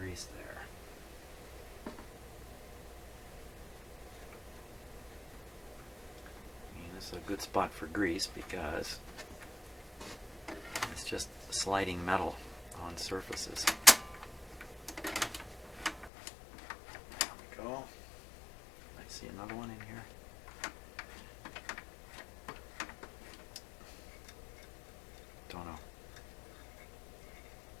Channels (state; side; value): drops out; right; at 16.1 s